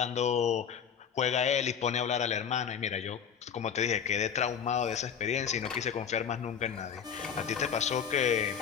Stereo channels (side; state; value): right; quieter; 7.7 dB